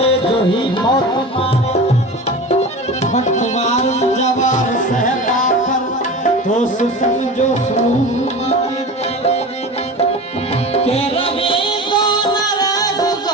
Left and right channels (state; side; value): normal; both; correlation 0.32